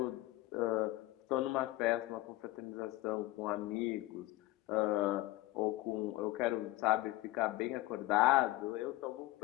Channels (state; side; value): quieter; right; 18.3 dB